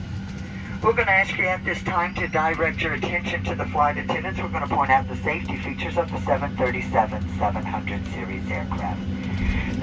We're going to ask you at this time to direct your attention to the flight attendants. We're going to point out the safety features of the 737-700 series aircraft.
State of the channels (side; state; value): both; identical; correlation 1.00